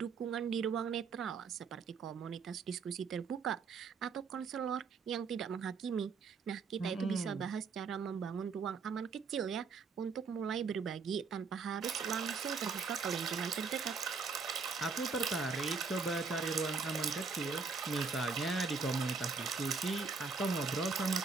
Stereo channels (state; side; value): quieter; left; 5.0 dB